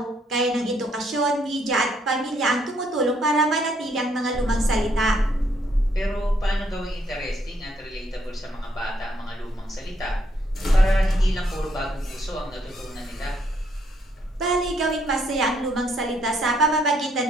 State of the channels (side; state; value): both; normal; correlation 0.71